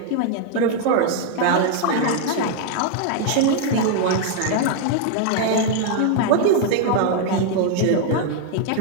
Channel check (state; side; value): different; both; correlation 0.00